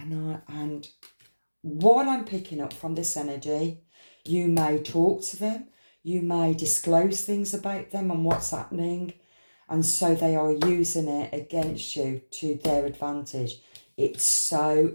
what I'm picking up from this energy, you may talk to them. You may disclose things about them and what's happening. And so they are using it against you to their advantage. It's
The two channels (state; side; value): inverted; both; correlation -1.00